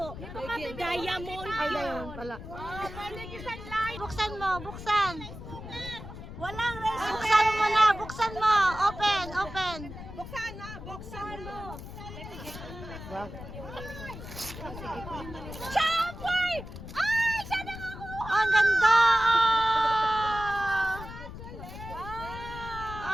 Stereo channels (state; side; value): noise; left; rumble, 11 dB below the sound